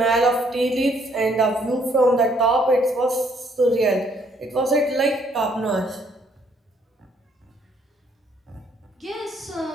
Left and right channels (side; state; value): both; normal; correlation 0.67